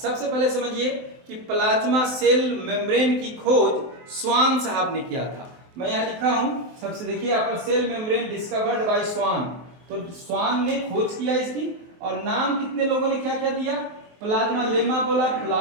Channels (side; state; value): left; late; 23 ms